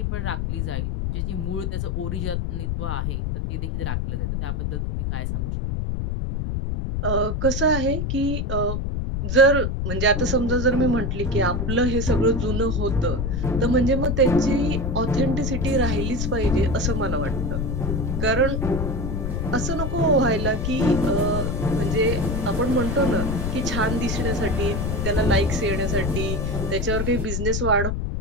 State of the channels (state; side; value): noise; left; rumble, 1 dB below the sound